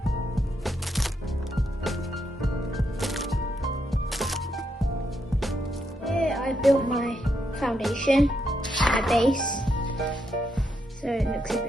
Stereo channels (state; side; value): normal; both; correlation 0.80